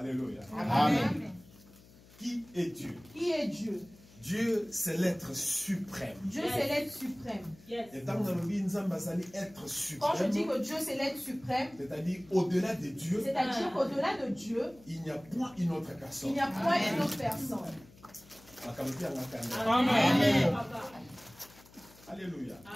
Amen. Qui est Dieu? Qui est Dieu? Dieu, c'est l'être suprême. Dieu, c'est l'être suprême. Et tant que nous être Quand je suprême, dis que Dieu, c'est l'être suprême, c'est-à-dire au-delà de Dieu, c'est-à-dire qu'au-delà de Dieu, il n'y a point une autre il personne. n'y a point une autre personne. Amen. Alléluia.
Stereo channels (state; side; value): noise; left; hum, 24 dB below the sound